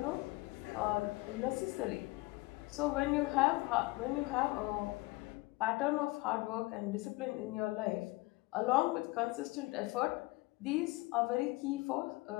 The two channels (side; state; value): right; quieter; 22.3 dB